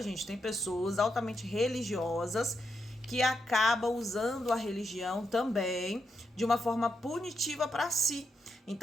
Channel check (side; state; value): both; normal; correlation 0.83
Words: gente? Tem pessoas altamente religiosas que acabam usando a religião também de uma forma punitiva para si.